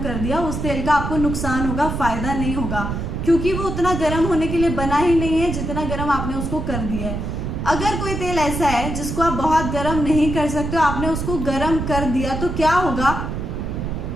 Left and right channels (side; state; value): right; noise; rumble, 4 dB below the sound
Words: दिया, उस तेल का आपको नुकसान होगा, फ़ायदा नहीं होगा, क्योंकि वो उतना गर्म होने के लिए बना ही नहीं है जितना गर्म आपने उसको कर दिया है। अगर कोई तेल ऐसा है जिसको आप बहुत गर्म नहीं कर सकते हो, आपने उसको गर्म कर दिया, तो क्या होगा,